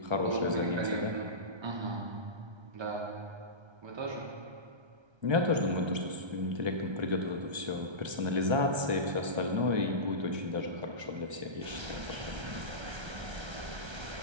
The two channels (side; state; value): left; late; 1.3 ms